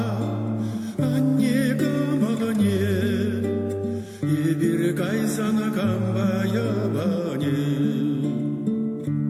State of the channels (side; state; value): both; identical; correlation 1.00